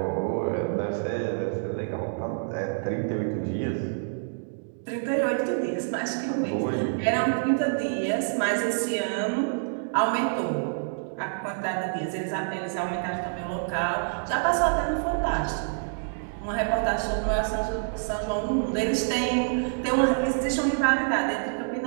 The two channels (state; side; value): silent; left; digital silence